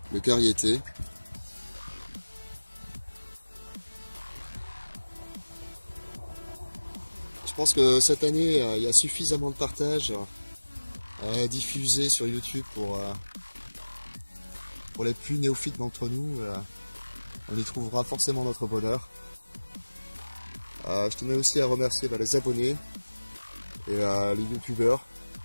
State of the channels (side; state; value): both; inverted; correlation -1.00